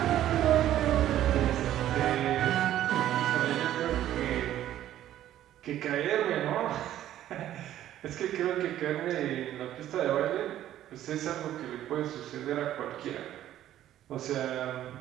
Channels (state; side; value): quieter; left; 12.4 dB